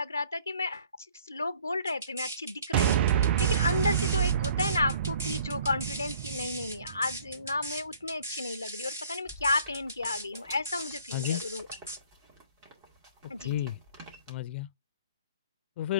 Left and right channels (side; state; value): both; inverted; correlation -0.56